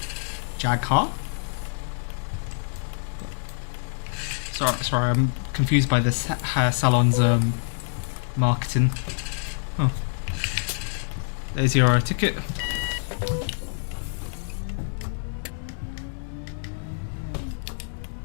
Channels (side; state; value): right; silent; 61 dB below the other